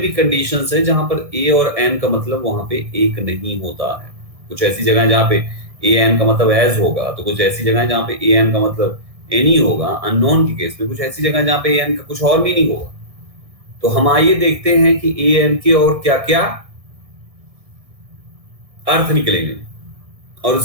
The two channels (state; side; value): late; left; 1.6 ms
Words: कंडीशंस है जहां पर ए और एन का मतलब वहां पे एक नहीं होता है। कुछ ऐसी जगह जहां पे ए एन का मतलब एज होगा, तो कुछ ऐसी जगह जहां पे ए एन का मतलब एनी होगा अननोन के केस में, कुछ ऐसी जगह जहां पे ए एन का कुछ और भी नहीं होगा। तो हम आइए देखते हैं कि ए एन के और क्या क्या अर्थ निकलेंगे और